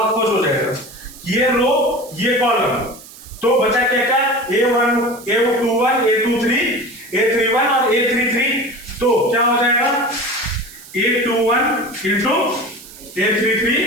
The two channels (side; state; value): right; noise; hiss, 18 dB below the sound